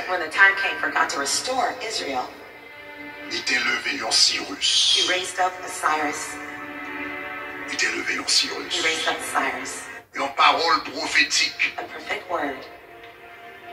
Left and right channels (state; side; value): identical; both; correlation 1.00